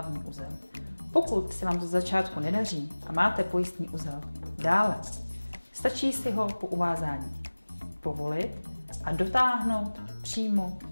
uzel. Pokud se vám to začátku nedaří a máte pojistný uzel dále, stačí si ho po uvázání povolit a dotáhnout přímo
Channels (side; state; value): both; inverted; correlation -1.00